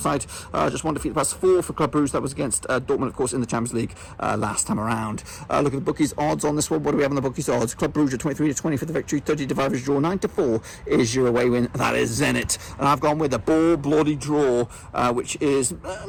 side, just 1 defeat the past 4 for Club Brugge. That was against Dortmund, of course, in the Champions League last time around. Look at the bookies odds on this one. What do we have on the bookies odds? Club Brugge 23-20 for the victory, 30-5 is draw, 9-4 is your away win. That is Zenit. And I've gone with a bloody draw, which is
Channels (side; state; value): both; identical; correlation 1.00